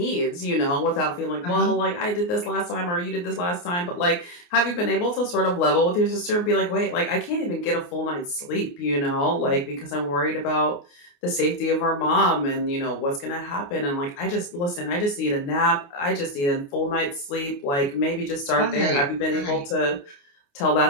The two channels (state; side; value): late; right; 29 ms